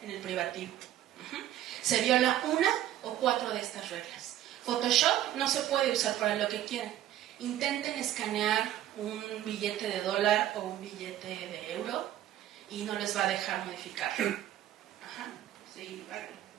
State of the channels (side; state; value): left; quieter; 12.5 dB